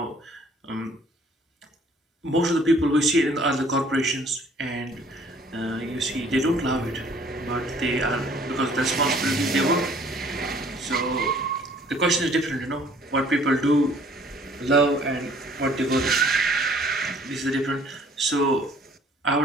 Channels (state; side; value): normal; both; correlation 0.57